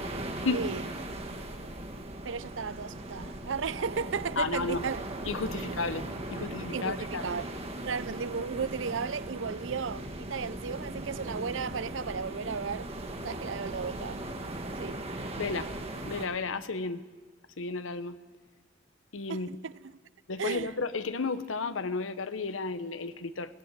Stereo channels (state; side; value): normal; both; correlation -0.07